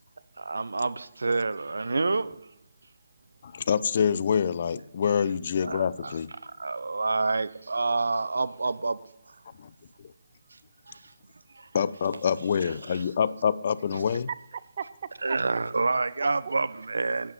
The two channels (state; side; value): inverted; both; correlation -0.83